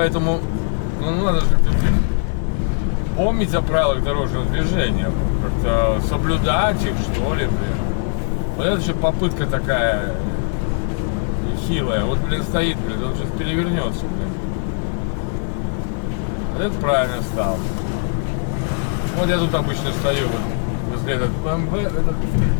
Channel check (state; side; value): silent; right; 66 dB below the other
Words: ну надо же помнить о правилах дорожного движения. Как-то соблюдать их, что ли, блин. Вот это же попытка такая хилая. Вот, блин, стоит, блин, он сейчас перевернется, блин. Вот это правильно стал. Вот я тут обычно стою, вот, возле этот БМВ, этот